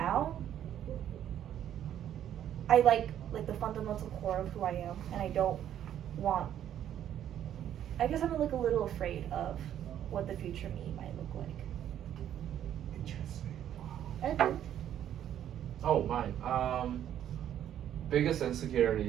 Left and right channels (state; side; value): quieter; left; 10.6 dB